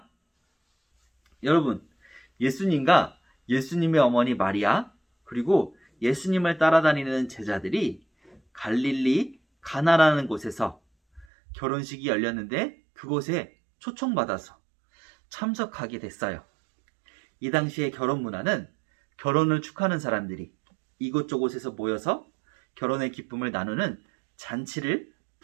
여러분, 예수님과 예수님의 어머니 마리아, 그리고 예수님을 따라다니는 제자들이 갈릴리 가나라는 곳에서 결혼식이 열렸는데 그곳에 초청받아서 참석하게 됐어요. 이 당시의 결혼 문화는 결혼을 축하하는 사람들이 이곳저곳에서 모여서 결혼의 기쁨을 나누는 잔치를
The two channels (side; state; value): left; drops out; at 11.2 s